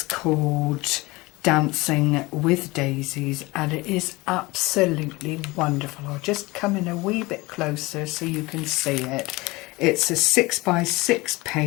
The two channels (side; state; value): right; quieter; 22.4 dB